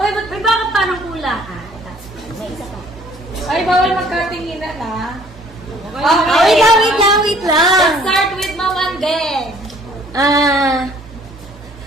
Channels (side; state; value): both; normal; correlation 0.57